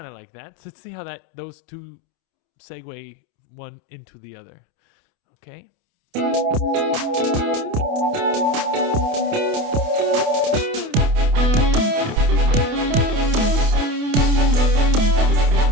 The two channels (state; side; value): late; left; 28 ms